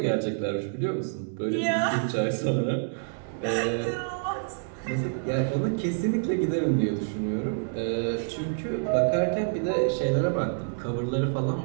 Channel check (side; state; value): left; silent; 58 dB below the other